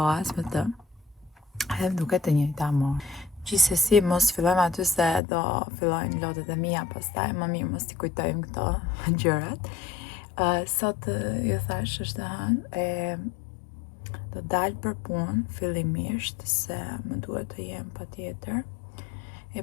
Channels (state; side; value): drops out; right; at 5.2 s